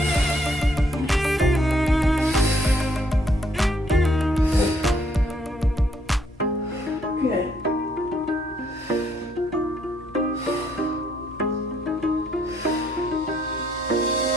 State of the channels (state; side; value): normal; both; correlation 0.69